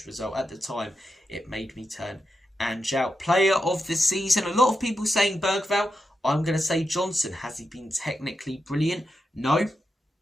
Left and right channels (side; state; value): both; normal; correlation 0.87